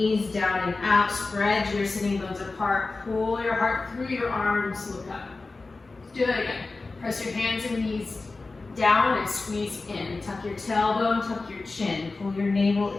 down and out, spread your sitting bones apart, pull your heart through your arms, look up. Let's do that again. Press your hands and knees down and squeeze in. Tuck your tailbone, tuck your chin, pull your navel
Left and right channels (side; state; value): right; quieter; 3.6 dB